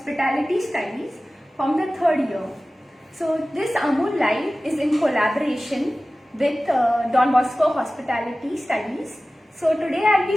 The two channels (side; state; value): both; normal; correlation 0.96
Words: Studies from the third year. So, this Amul Live is in collaboration with Don Bosco Hospitality Studies. So, today I will